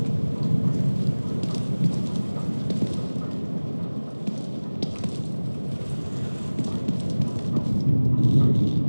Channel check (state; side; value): inverted; both; correlation -1.00